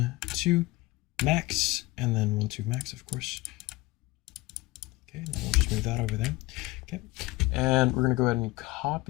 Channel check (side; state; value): right; quieter; 20.7 dB